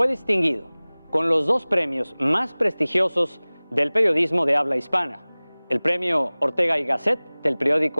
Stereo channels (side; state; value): both; inverted; correlation -1.00